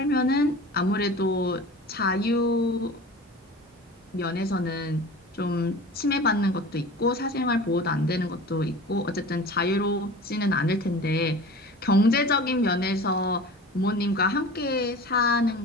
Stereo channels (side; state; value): both; normal; correlation 0.37